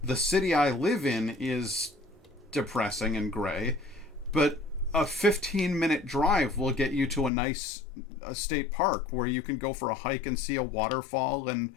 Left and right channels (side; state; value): right; drops out; at 7.3 s